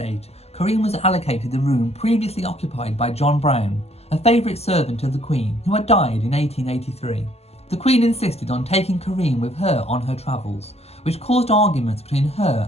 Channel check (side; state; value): right; late; 0.30 ms